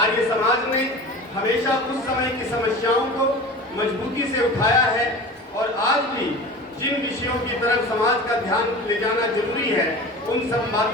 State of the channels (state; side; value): normal; both; correlation 0.35